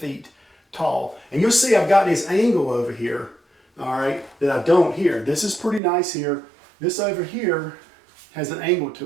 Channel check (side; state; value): left; drops out; at 5.8 s